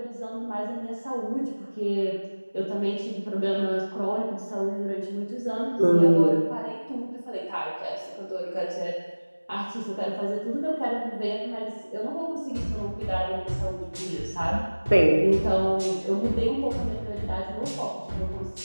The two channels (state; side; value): inverted; both; correlation -1.00